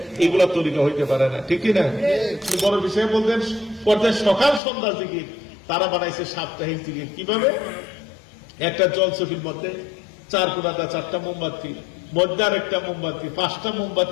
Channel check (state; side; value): drops out; right; at 4.6 s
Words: এগুলো তরিকা হইতে পারে না, ঠিক না? বড় বিষয় বলতেন করতে সকাল সন্ধ্যা জিকির, তারা বানাইছে সাপ্তাহিক জিকির। কিভাবে? একটা জলচকির মধ্যে 4 কোণাটা 4টা মোমবাতি, মধ্যে আর একটা মোমবাতি, 5টা